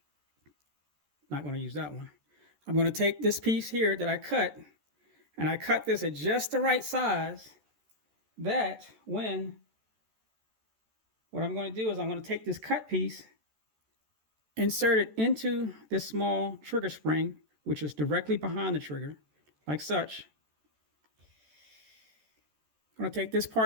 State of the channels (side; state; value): left; late; 14 ms